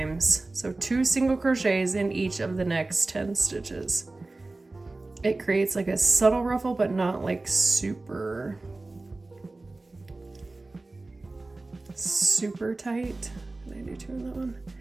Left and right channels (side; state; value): left; quieter; 3.2 dB